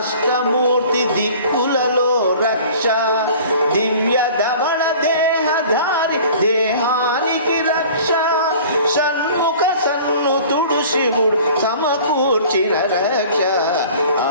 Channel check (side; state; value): both; inverted; correlation -0.45